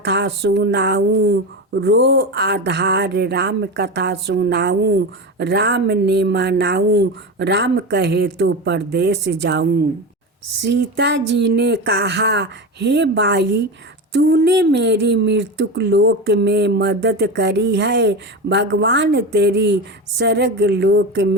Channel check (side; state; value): both; normal; correlation 0.22